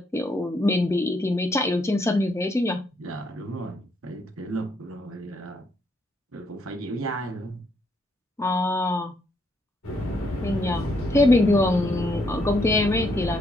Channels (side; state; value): both; normal; correlation 0.73